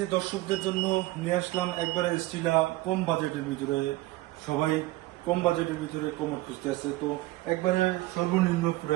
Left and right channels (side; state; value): left; quieter; 18.7 dB